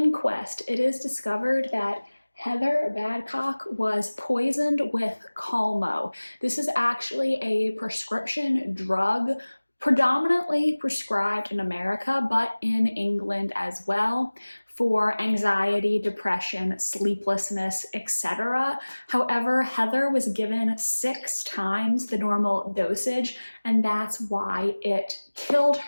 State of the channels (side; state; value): both; inverted; correlation -1.00